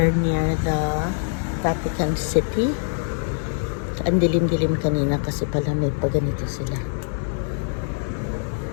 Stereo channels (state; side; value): silent; right; digital silence